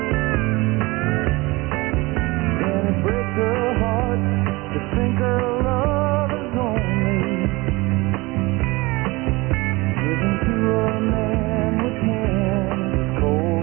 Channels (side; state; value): left; quieter; 22.9 dB